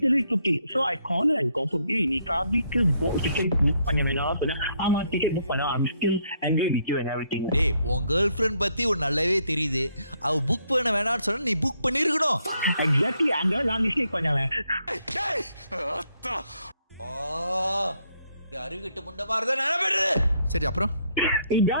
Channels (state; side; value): inverted; both; correlation -0.72